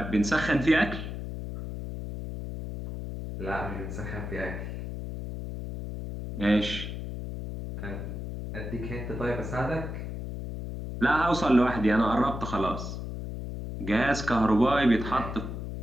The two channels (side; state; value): left; noise; hum, 7 dB below the sound